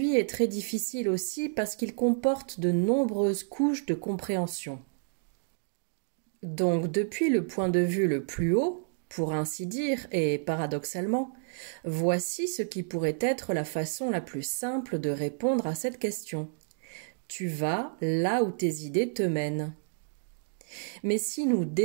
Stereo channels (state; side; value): silent; left; digital silence